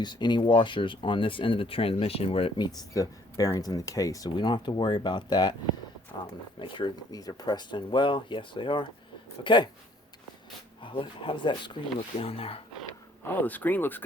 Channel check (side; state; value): both; normal; correlation 0.61